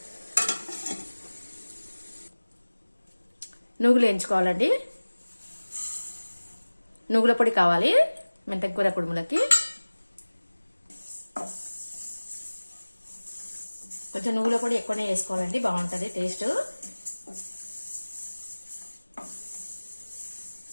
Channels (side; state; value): both; inverted; correlation -1.00